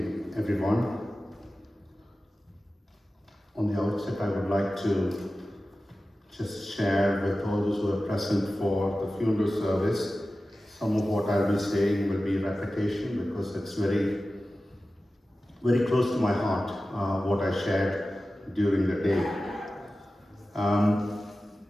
everyone. On the outset, I would like to just share with all those who are present for the funeral service. Some of what I'll be saying will be repetition because it's very, very close to my heart, what I shared during the day.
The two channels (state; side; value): normal; both; correlation 0.95